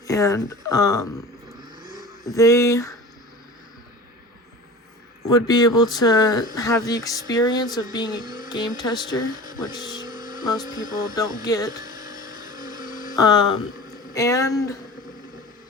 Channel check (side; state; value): both; normal; correlation 0.36